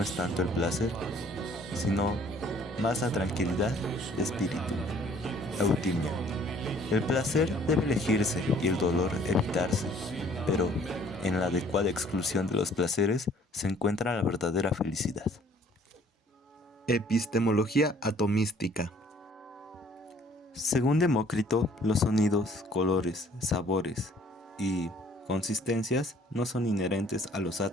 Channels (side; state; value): both; normal; correlation 0.58